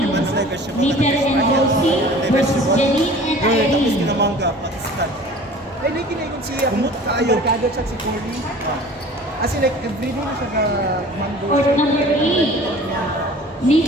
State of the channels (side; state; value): both; normal; correlation 0.45